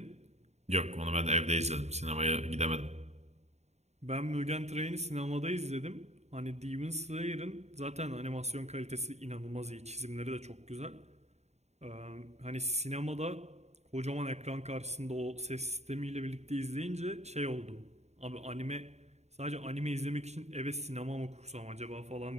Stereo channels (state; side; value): late; left; 0.32 ms